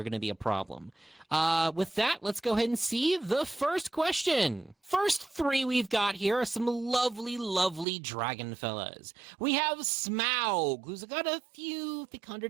going to be a problem. With that, let's go ahead and see the first question. First 3 we've got here are some lovely, lovely dragon fellas. We have Smaug, who's got a few thick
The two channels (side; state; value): left; drops out; at 7.9 s